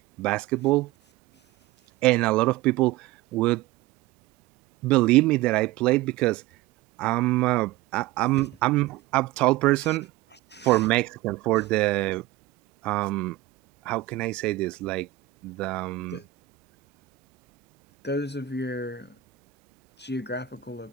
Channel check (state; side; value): quieter; left; 15.5 dB